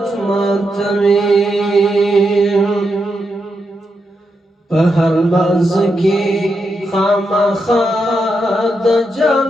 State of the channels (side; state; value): both; normal; correlation 0.84